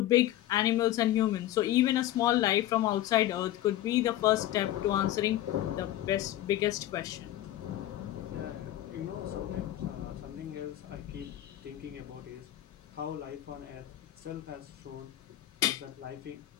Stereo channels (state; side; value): quieter; right; 13.9 dB